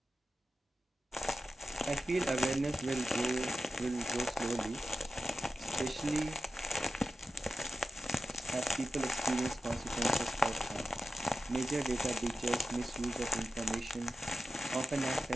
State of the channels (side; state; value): both; normal; correlation 0.92